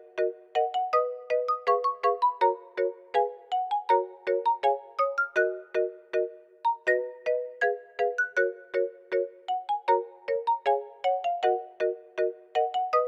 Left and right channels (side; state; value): both; identical; correlation 1.00